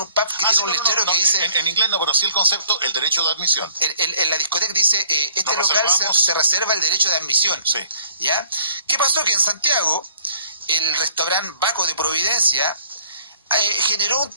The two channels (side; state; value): both; inverted; correlation -0.58